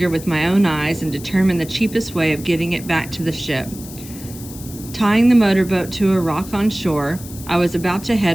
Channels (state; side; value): noise; left; hiss, 16 dB below the sound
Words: with my own eyes, and determine the cheapest way of getting it back to the ship. Tying the motorboat to a rock on shore, I was about to